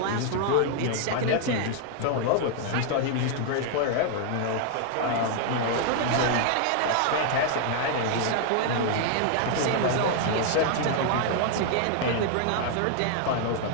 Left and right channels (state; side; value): different; both; correlation 0.00